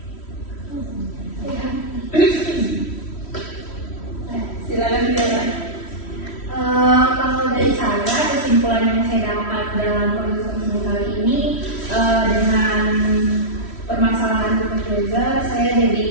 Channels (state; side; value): late; right; 3.1 ms